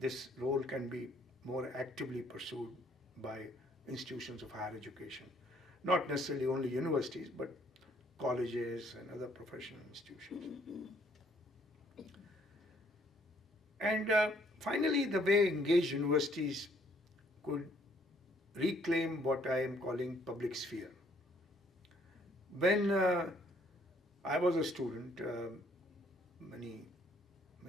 role can be more actively pursued by institutions of higher education. Not necessarily only universities, but colleges and other professional institutions. And finally, the way engaged universities could reclaim what I am calling public sphere. When I was a student many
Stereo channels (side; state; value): both; normal; correlation 0.64